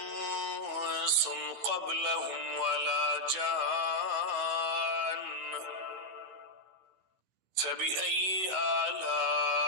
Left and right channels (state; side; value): late; left; 15 ms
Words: قبلهم ولا جان فبأي